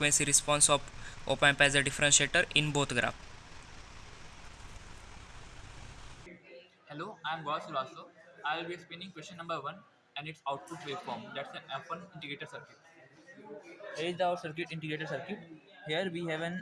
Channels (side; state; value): both; identical; correlation 1.00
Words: response of op-amp as a differentiator in both graph. Hello, I am Gaurav Sulaso. I will be explaining question number 1 and its output waveform. That's an F1 integrator circuit. Here is our circuit integrator circuit. Here we have